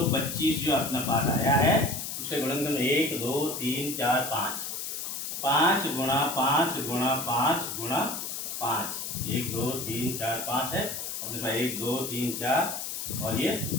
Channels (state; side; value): noise; left; hiss, 5 dB below the sound